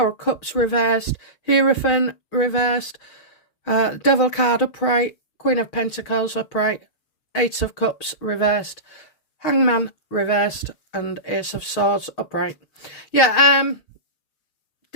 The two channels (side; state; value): right; late; 6.4 ms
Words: of Cups reversed, Hierophant reversed, Devil card upright, Queen of Pentacles upright, Eight of Cups reversed, Hangman reversed, and Ace of Swords upright. Yeah,